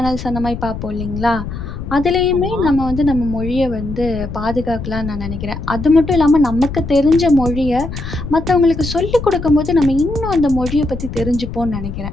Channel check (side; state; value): left; noise; rumble, 8 dB below the sound